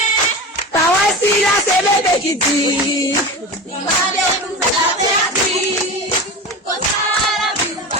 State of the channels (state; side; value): normal; both; correlation 0.27